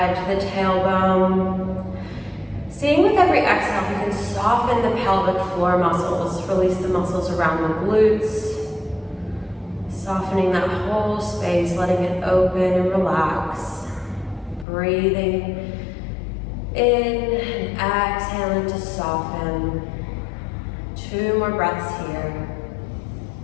to the tailbone. Seeing with every exhale, if you can soften the pelvic floor muscles, release the muscles around the glutes, softening that whole space, letting it open and relax. Breathing in and exhaling to soften. 2 more breaths here.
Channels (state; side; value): drops out; right; at 14.7 s